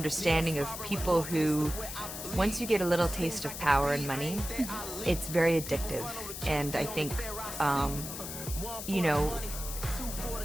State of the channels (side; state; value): left; noise; hiss, 8 dB below the sound